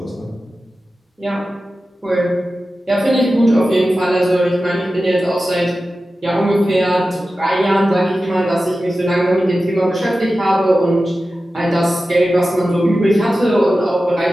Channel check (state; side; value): normal; both; correlation 0.94